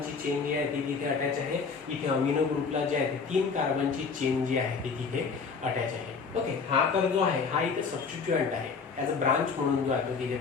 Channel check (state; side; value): quieter; right; 5.2 dB